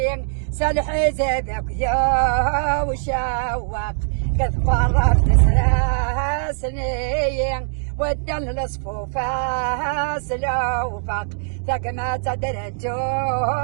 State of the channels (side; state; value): left; silent; digital silence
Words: سلحي زبك يا وشواق قد قربت سنين ودن الصفوفة سلوفق ثقمة درجو